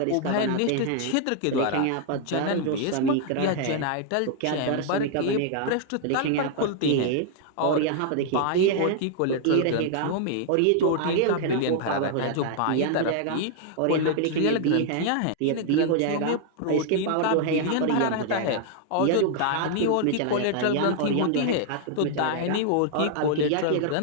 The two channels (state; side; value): different; both; correlation 0.00